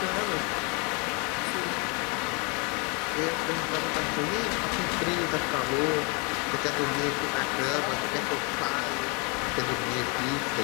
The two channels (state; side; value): quieter; right; 31.7 dB